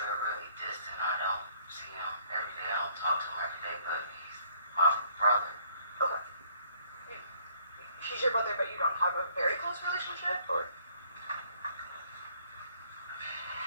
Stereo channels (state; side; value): inverted; both; correlation -0.63